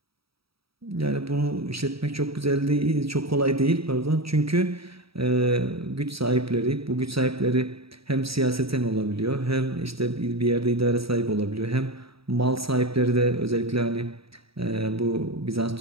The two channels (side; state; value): left; late; 0.76 ms